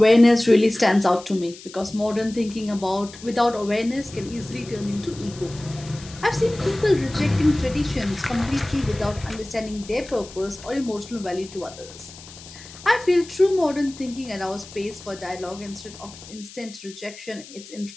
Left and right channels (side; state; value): left; noise; hiss, 17 dB below the sound